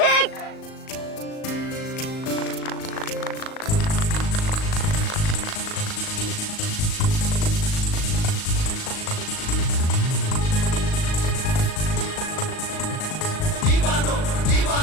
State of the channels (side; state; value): right; late; 38 ms